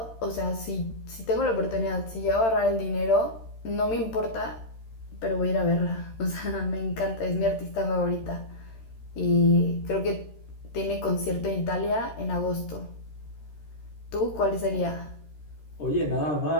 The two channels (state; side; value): late; right; 13 ms